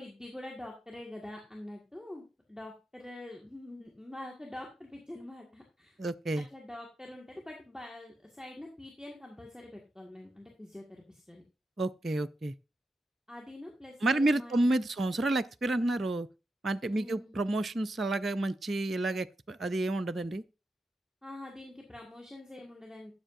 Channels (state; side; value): normal; both; correlation 0.87